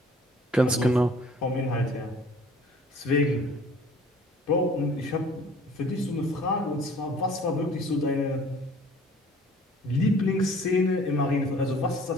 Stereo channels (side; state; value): both; normal; correlation 0.52